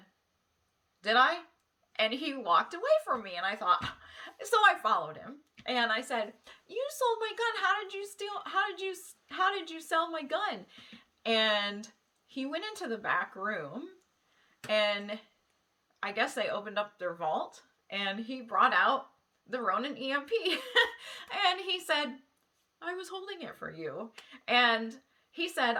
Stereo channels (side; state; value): both; identical; correlation 1.00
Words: "Did I?" And he walked away from me, and I thought, so I followed him. And I said, "You sold my gun. How did you sell my gun?" And he went into the back room, and I guess they opened up their vault, and he brought out the Ronin EMP. And he said, "I was holding it for you." And he